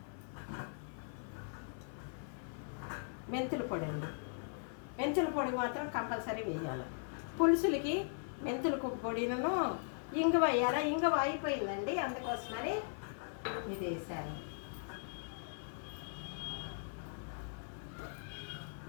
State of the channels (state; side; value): silent; right; 52 dB below the other